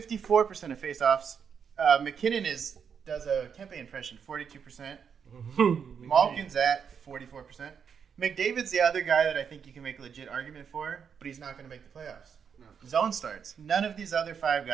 of face-offs. McKinnon does a Kempe impression, 42%. Malkin's at 44%. McDavid's the other guy that I think you can make a legit argument for, but he's not going to make the playoffs. No. Zone starts. None of these other 5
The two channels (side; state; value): left; quieter; 7.0 dB